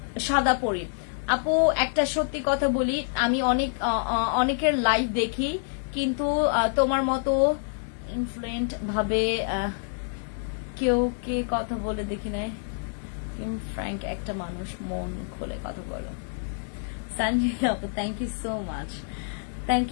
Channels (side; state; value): right; silent; digital silence